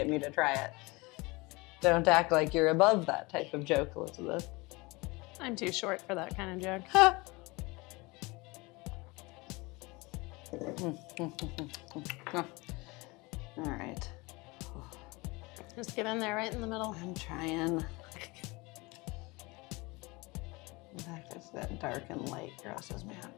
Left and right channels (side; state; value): right; quieter; 24.6 dB